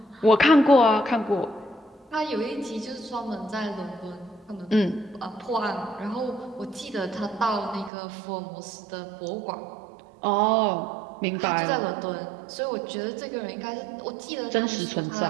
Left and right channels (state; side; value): drops out; left; at 7.9 s